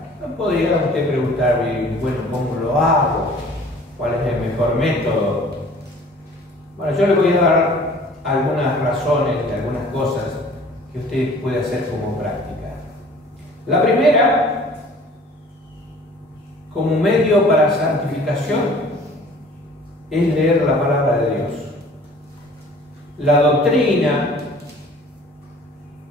No podría usted preguntar, bueno, ¿cómo lo hago? ¿Cuál es el mejor método? Bueno, yo le voy a dar algunas razones de algunas cosas que usted puede hacer como práctica. La primera, como medio para santificación, es leer la palabra de Dios. La doctrina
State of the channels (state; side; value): normal; both; correlation 0.50